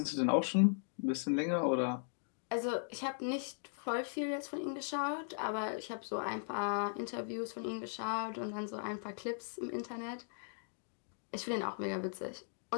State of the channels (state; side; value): silent; right; digital silence